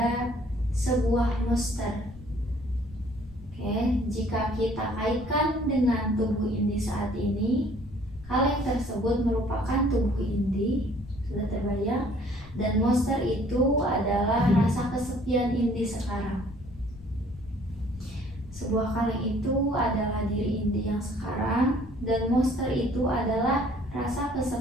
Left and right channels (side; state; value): left; noise; rumble, 18 dB below the sound